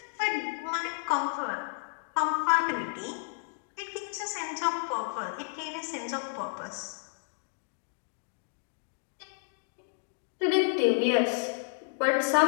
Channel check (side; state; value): right; silent; digital silence